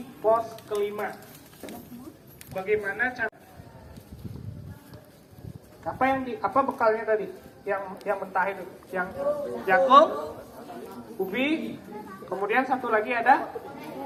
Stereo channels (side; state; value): both; identical; correlation 1.00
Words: pos kelima. Bagaimana cara? Apa bekalnya tadi? Yang mentah itu, yang jagung, ubi, kemudian satu lagi ada